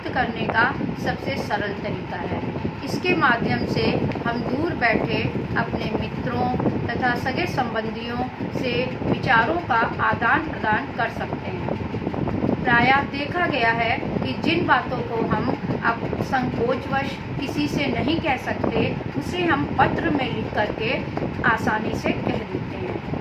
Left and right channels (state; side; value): identical; both; correlation 1.00